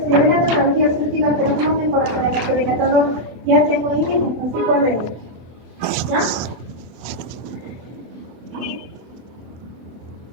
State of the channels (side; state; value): left; late; 24 ms